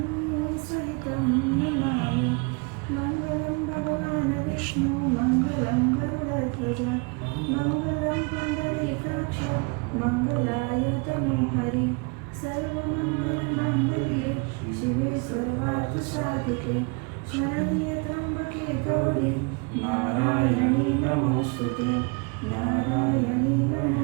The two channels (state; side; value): quieter; left; 32.3 dB